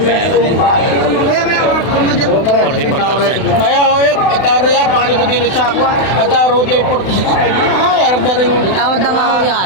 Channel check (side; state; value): right; late; 32 ms